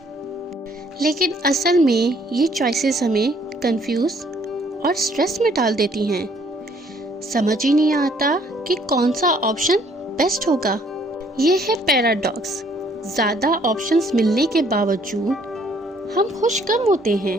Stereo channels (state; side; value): normal; both; correlation 0.63